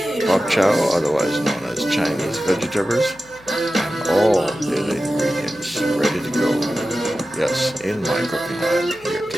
pop chow, otherwise known as Chinese vegetables, and all the other ingredients ready to go. Yes, in my cooking lab here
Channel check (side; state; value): left; noise; hum, 25 dB below the sound